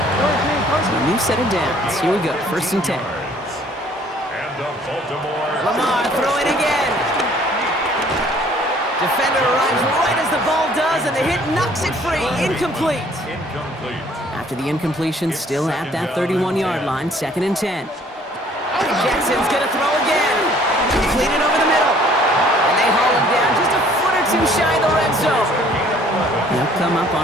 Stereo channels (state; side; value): normal; both; correlation 0.57